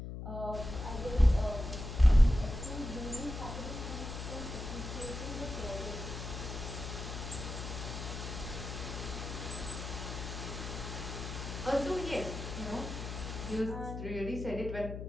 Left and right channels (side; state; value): left; noise; hum, 7 dB below the sound